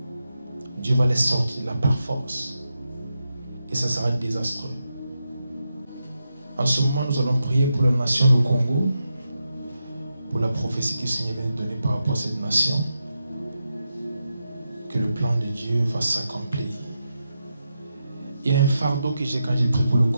Dieu va les sortir de là par force. Et ça sera désastreux. En ce moment, nous allons prier pour la nation du Congo, pour la prophétie que le Seigneur vient de donner par rapport à cette nation, que le plan de Dieu va s'accomplir. Il y a un fardeau que j'ai quand j'ai prié pour le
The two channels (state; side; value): inverted; both; correlation -0.87